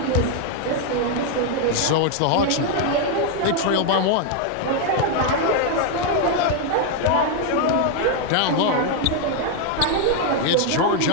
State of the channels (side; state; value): both; different; correlation 0.00